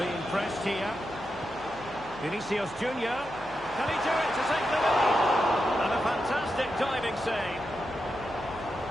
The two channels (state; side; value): noise; left; hum, 21 dB below the sound